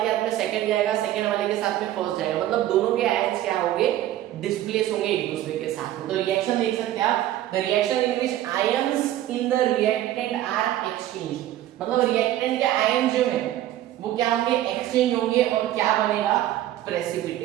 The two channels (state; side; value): quieter; left; 13.4 dB